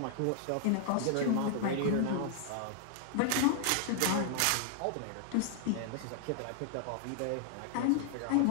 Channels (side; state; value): both; different; correlation 0.00